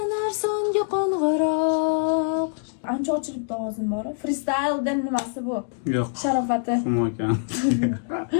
songa qo'ng'iroq. Ancha ochilibdi ovozim bor. Freestyledan nimasi bu? Yo'q. Sharofati. Xumokan.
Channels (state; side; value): silent; right; digital silence